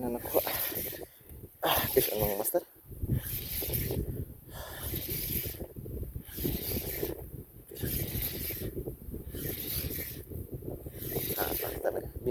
na nakuha? Fish on mga master. Talaga.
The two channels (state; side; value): identical; both; correlation 1.00